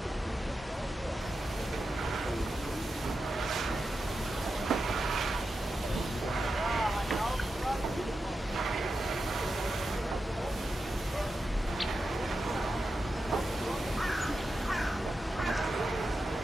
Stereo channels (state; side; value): normal; both; correlation 0.90